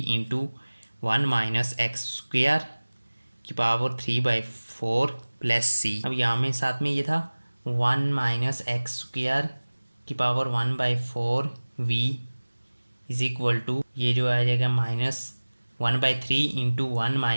इंटू 1 माइनस एक्स स्क्वायर की पावर 3/4 प्लस c। अब यहाँ में साथ में ये था 1 माइनस एक्स स्क्वायर की power 1/4 v is equal to, ये जो आ जाएगा -1/3 इंटू 1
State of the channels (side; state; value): both; inverted; correlation -1.00